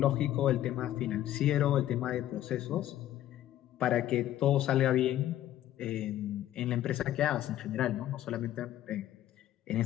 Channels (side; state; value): right; quieter; 12.8 dB